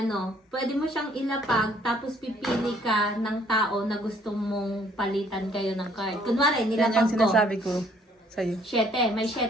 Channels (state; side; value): normal; both; correlation 0.63